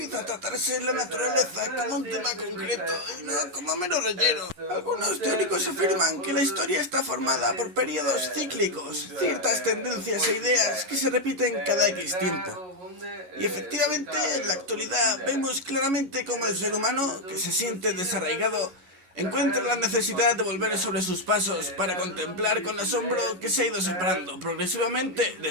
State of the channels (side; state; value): left; late; 11 ms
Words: a tratarse la naturaleza como un tema concreto y no como mero relleno. Algunos teóricos afirman que la historia está formada por periodos cíclicos, ciertas tendencias e ideas que se repiten cada X tiempo. Y efectivamente, en la actualidad vemos claramente cómo el ser humano, que se siente desarraigado, encuentra la necesidad de volver sobre sus pasos para contemplar con asombro que se ha ido separando progresivamente de